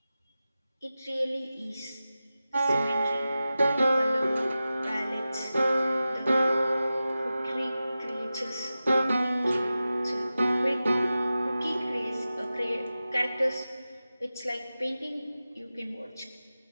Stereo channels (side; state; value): both; inverted; correlation -0.94